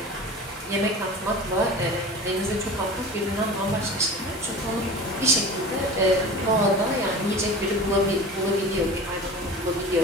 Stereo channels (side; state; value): both; normal; correlation 0.35